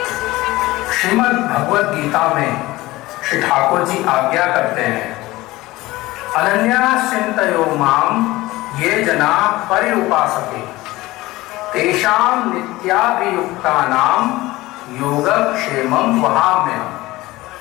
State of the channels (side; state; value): right; quieter; 19.0 dB